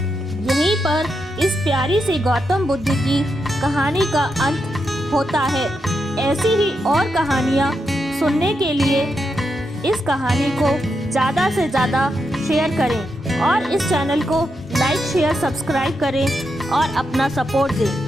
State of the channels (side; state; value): both; normal; correlation 0.84